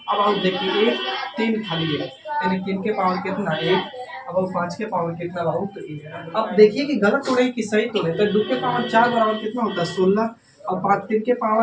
अब आप देखिए 1 3 खाली है यानी 3 के पावर कितना 1, अब 5 के पावर कितना बाबू तो 1। अब देखिए कि गलत तोड़े कि सही तोड़े। तो 2 के पावर 4 बराबर कितना होता है 16, और 5 3 के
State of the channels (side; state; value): both; identical; correlation 1.00